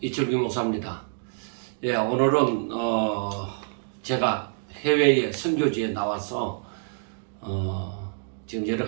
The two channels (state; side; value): silent; left; 60 dB below the other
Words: 이철규 목사입니다. 오늘은 제가 해외에 선교지에 나와서 지금 여러